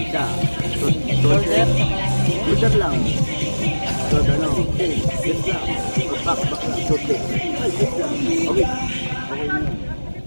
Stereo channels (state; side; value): inverted; both; correlation -1.00